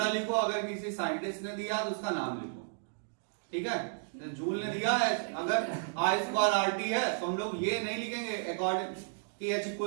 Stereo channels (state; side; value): silent; left; digital silence